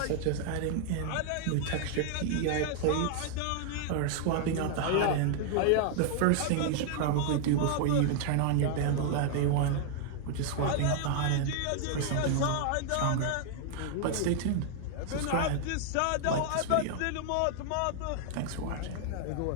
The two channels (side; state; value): both; different; correlation 0.00